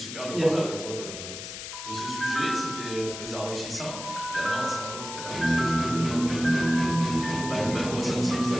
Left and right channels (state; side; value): noise; left; hiss, 9 dB below the sound